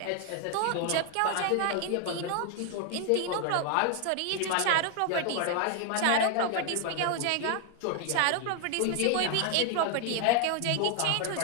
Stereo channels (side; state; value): both; different; correlation 0.00